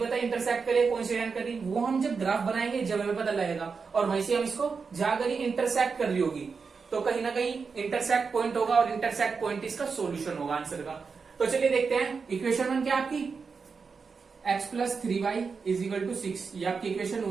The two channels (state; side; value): quieter; left; 5.2 dB